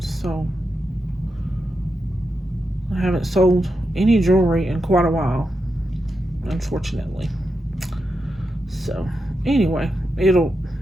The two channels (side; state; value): both; normal; correlation 0.87